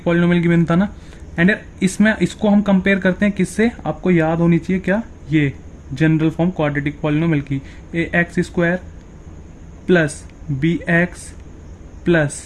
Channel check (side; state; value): both; identical; correlation 1.00